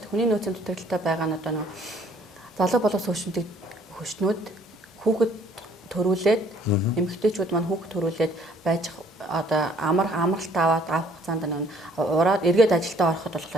дээ. Хүний нөөцийн дутагдaltaй байгаа нь одоо нэг залуу боловс хөшнүүд хүүхэд төрүүлээд эмэгтэйчүүд маань хүүхэд төрүүлээд байж одоо амралт аваад авах хугацаанд нэг ураад эргээд ажилдаа ороход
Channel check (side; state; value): both; normal; correlation 0.61